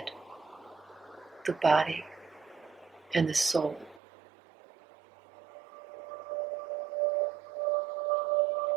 the body, and the soul.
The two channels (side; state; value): left; drops out; at 4.0 s